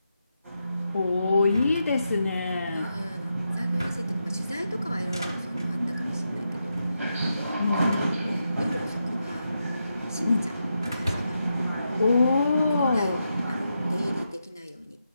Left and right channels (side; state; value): both; inverted; correlation -0.85